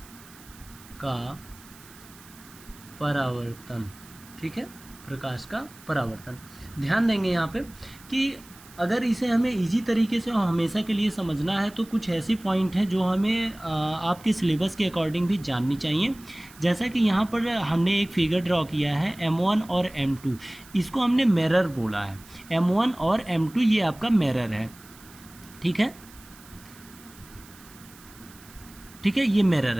का परावर्तन. ठीक है, प्रकाश का परावर्तन. ध्यान देंगे यहाँ पे कि अगर इसे हमें इजी तरीके से और हमेशा के लिए समझना है तो कुछ ऐसी पॉइंट हैं जो हमें आपके सिलेबस के अकॉर्डिंग भी जाननी चाहिए. जैसा कि यहाँ पर हमने एक फिगर ड्रॉ किया है M1 और M2, इसको हमने मिरर बोला है. M1 और M2 ये आपका मिरर है. ठीक है, ठीक है, ये मिरर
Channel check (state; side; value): noise; right; hiss, 22 dB below the sound